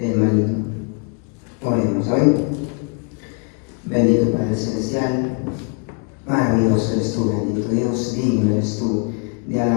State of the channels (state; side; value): quieter; right; 36.5 dB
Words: maligno. Oremos, ¿saben? Bendito Padre Celestial, maravilloso eres tú, bendito Dios, digno eres tú de